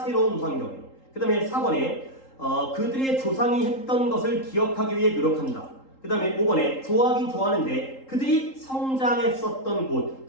환경에. 그 다음에 4번에 그들의 조상이 했던 것을 기억하기 위해 노력한다. 그 다음에 5번에 좋아하긴 좋아하는데 그들이 성장했었던 곳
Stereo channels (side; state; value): right; late; 3.8 ms